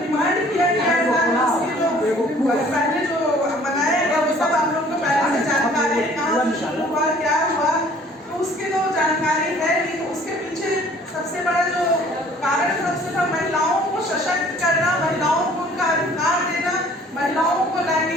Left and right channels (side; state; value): both; normal; correlation 0.54